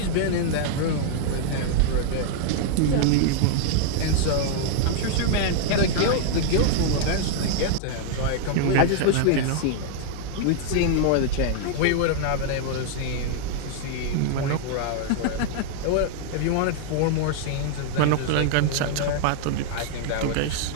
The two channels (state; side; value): different; both; correlation 0.00